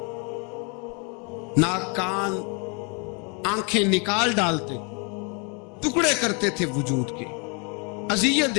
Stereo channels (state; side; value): quieter; right; 34.9 dB